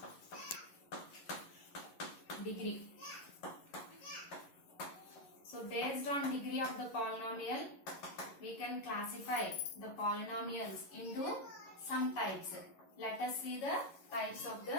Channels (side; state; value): right; late; 11 ms